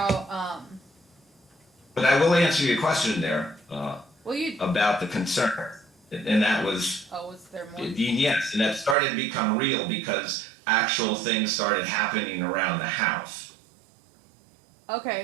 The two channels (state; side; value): drops out; left; at 9.0 s